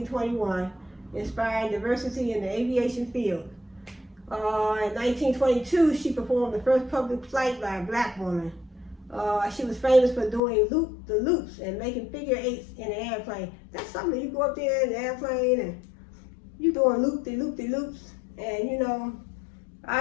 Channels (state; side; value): drops out; right; at 10.4 s